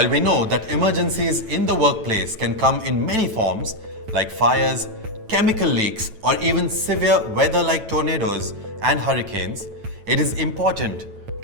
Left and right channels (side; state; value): left; late; 9.1 ms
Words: we know that emergencies in the workplace can come in many forms, like fires, chemical leaks, or even severe weather like tornadoes and hurricanes, it is important